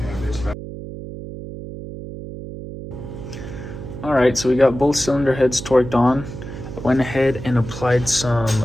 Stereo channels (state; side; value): noise; right; hum, 10 dB below the sound